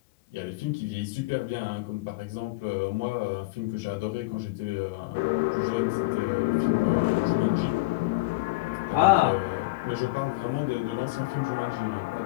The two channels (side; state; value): right; quieter; 22.0 dB